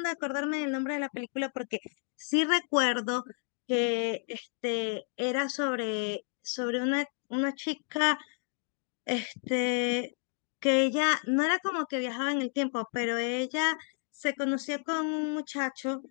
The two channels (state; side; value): silent; right; 57 dB below the other